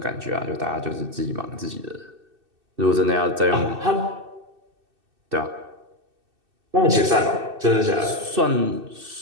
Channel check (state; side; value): late; left; 2.6 ms